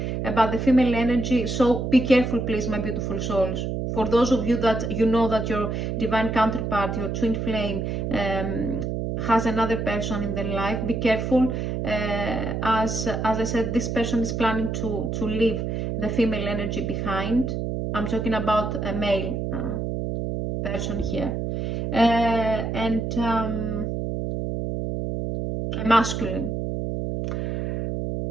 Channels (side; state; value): right; noise; hum, 2 dB below the sound